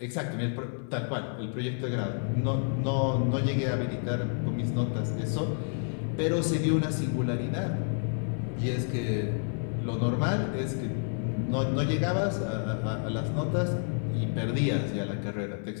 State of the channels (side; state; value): right; silent; 58 dB below the other